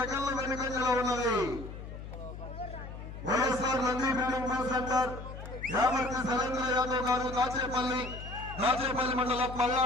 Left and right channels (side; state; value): left; noise; hum, 11 dB below the sound